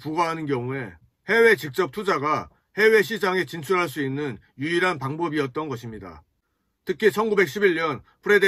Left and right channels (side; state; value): both; identical; correlation 1.00